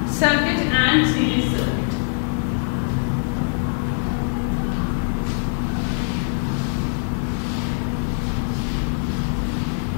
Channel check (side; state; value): right; silent; 62 dB below the other